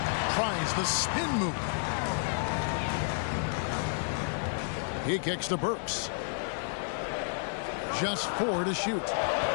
Tries the spin move. He kicks to Burks. Just 4 to shoot.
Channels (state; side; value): silent; right; digital silence